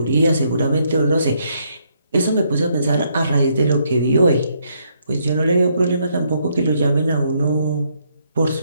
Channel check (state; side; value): inverted; both; correlation -0.73